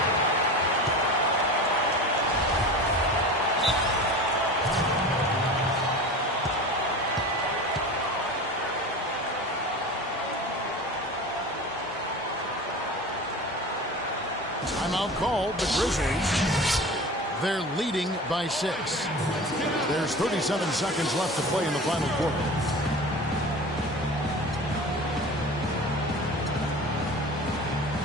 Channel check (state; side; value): normal; both; correlation 0.34